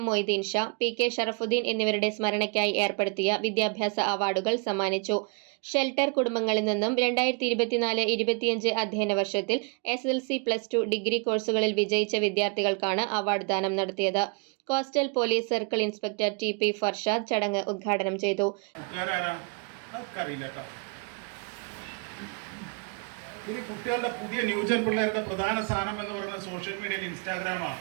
Moideen Shah, PK Sharafuddin എന്നിവരുടെ സ്മരണയ്ക്കായി ഏർപ്പെടുത്തിയ വിദ്യാഭ്യാസ അവാർഡുകൾ സമ്മാനിച്ചു. ഷെൽട്ടർ കുടുംബങ്ങളിൽ നിന്നും 2024-25 അധ്യയന വർഷത്തിൽ SSLC+2 ഡിഗ്രി കോഴ്സുകളിൽ വിജയിച്ച വിദ്യാർത്ഥികൾക്കാണ് അവാർഡ് ദാനം നടത്തിയത്. Coastal police circle inspector TP Farshad ചടങ്ങ് ഉദ്ഘാടനം ചെയ്തു. ഇനി കുട്ടികളുടെ പുതിയ ന്യൂജൻ പിള്ളേരുടെ പ്രധാന സ്ഥാനം എന്ന് പറയുന്നത് സോഷ്യൽ മീഡിയയിൽ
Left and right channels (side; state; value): left; quieter; 32.8 dB